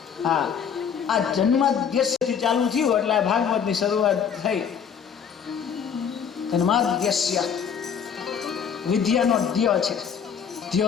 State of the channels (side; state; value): right; quieter; 7.3 dB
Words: હા આ જન્માદ્યસ્યથી ચાલુ થયું એટલે આ ભાગવતની શરૂઆત થઈ. જન્માદ્યસ્ય વિદ્યાનો ધ્ય છે,